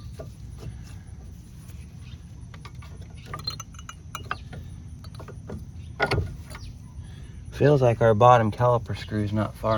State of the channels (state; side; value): identical; both; correlation 1.00